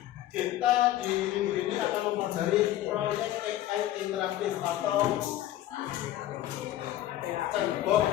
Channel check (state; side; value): quieter; right; 13.6 dB